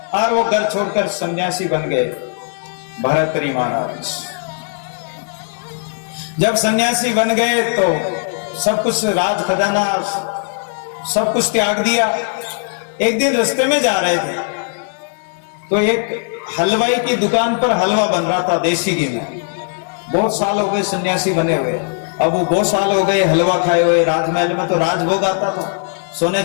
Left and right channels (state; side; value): silent; right; digital silence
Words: और वो घर छोड़कर सन्यासी बन गए भरतरी महाराज। जब सन्यासी बन गए तो सब कुछ, राज खजाना सब कुछ त्याग दिया। एक दिन रास्ते में जा रहे थे तो एक हलवाई की दुकान पर हलवा बन रहा था देसी घी में। बहुत साल हो गए सन्यासी बने हुए, अब वो बहुत साल हो गए हलवा खाए हुए। राजमहल में तो राजभोग आता था, सोने